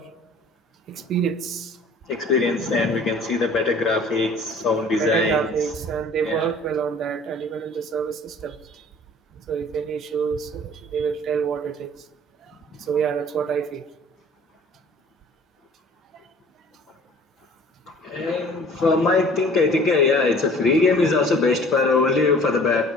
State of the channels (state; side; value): normal; both; correlation 0.49